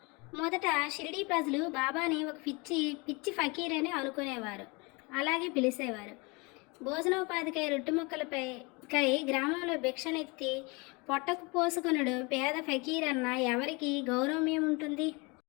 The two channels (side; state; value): right; quieter; 28.0 dB